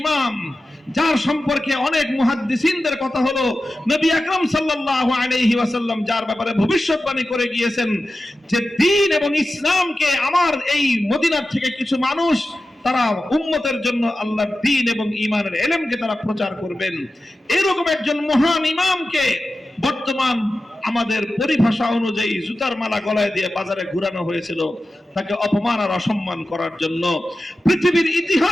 ইমাম, যার সম্পর্কে অনেক মুহাদ্দিসিনদের কথা হলো, নবী আকরাম সাল্লাল্লাহু আলাইহি ওয়াসাল্লাম যার ব্যাপারে ভবিষ্যৎবাণী করে গিয়েছেন যে দ্বীন এবং ইসলামকে আমার এই মদিনার থেকে কিছু মানুষ তারা উম্মতের জন্য আল্লাহর দ্বীন এবং ঈমানের ইলমকে তারা প্রচার করবেন। এরকম একজন মহান ইমামকে বর্তমান আমাদের পরিভাষা অনুযায়ী জুতার মালা গলায় দিয়ে বাজারে ঘুরানো হয়েছিল তাকে অপমান আর অসম্মান করার জন্য। পৃথিবীর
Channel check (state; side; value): normal; both; correlation 0.93